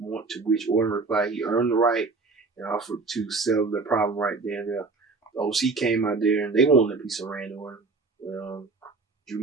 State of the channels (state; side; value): quieter; left; 4.1 dB